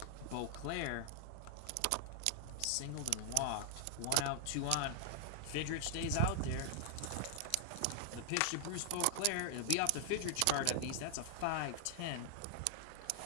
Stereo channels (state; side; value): different; both; correlation 0.00